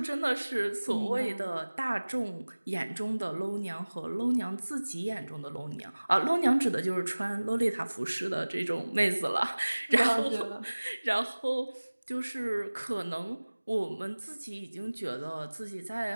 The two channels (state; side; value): inverted; both; correlation -1.00